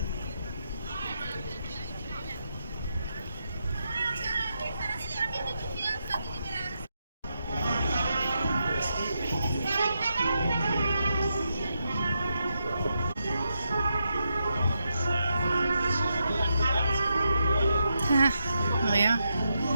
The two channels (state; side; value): inverted; both; correlation -0.84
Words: There we are,